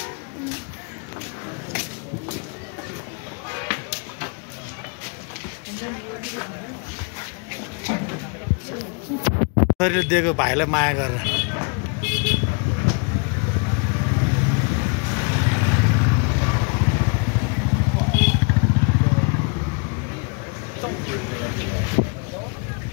दिएको भाइलाई माया गरेर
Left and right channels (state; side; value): quieter; right; 35.1 dB